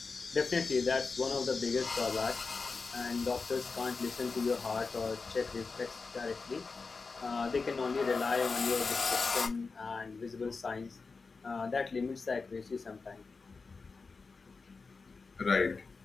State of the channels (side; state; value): right; quieter; 4.4 dB